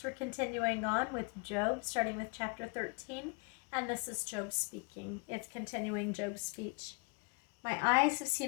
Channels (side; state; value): right; quieter; 32.0 dB